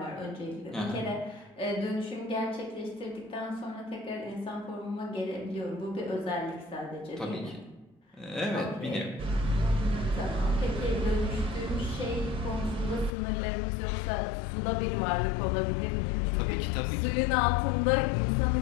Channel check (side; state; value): right; drops out; at 13.1 s